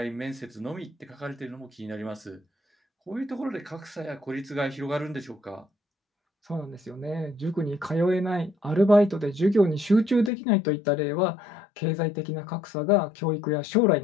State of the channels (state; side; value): drops out; right; at 10.3 s